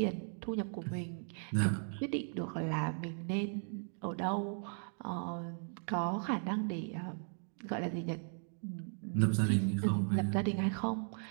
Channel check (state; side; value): silent; left; 53 dB below the other